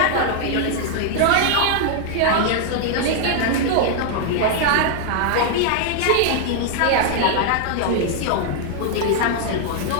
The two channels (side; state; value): both; different; correlation 0.00